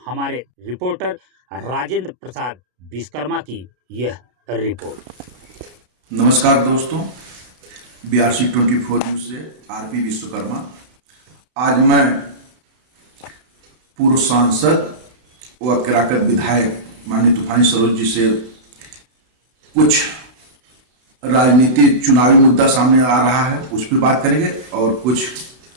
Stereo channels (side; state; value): left; late; 32 ms